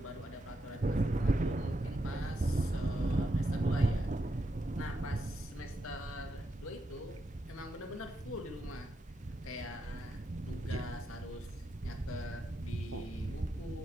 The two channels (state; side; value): normal; both; correlation 0.83